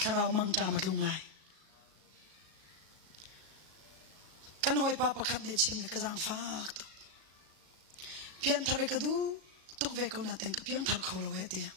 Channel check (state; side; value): late; left; 37 ms